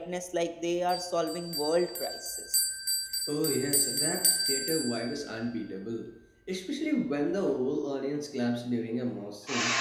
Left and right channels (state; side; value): identical; both; correlation 1.00